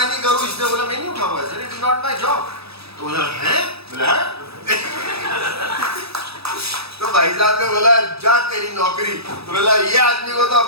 नहीं करूं, इसने बोला मैं नहीं उठाऊंगा, sir it is not my job. तो बोला है, बोला तो भाई साहब ने बोला जा तेरी नौकरी। तो बोला ये आदमी को तो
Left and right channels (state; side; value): late; left; 0.78 ms